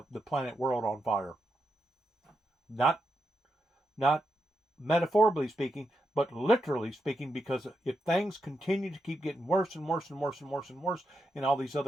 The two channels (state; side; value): normal; both; correlation 0.84